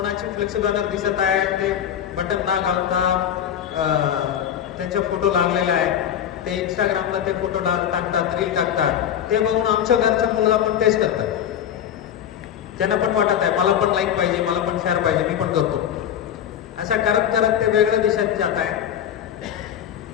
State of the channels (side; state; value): right; quieter; 9.8 dB